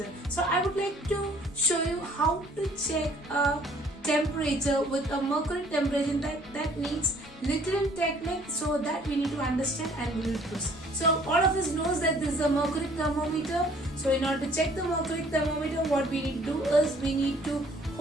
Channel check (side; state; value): both; normal; correlation 0.58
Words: So I would like to show you how to check a temperature with a mercury temperature. That needs little technique, so that we need to understand and we will proceed. So all of us knows that this is a mercury thermometer. So in order to check the mercury thermometer, what we need to do is we need to